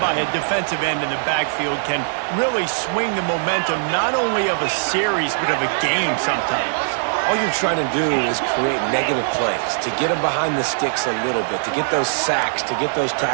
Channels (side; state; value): left; silent; digital silence